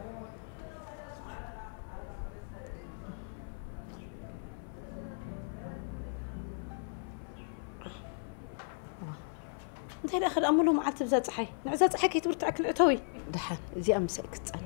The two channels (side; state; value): right; silent; 54 dB below the other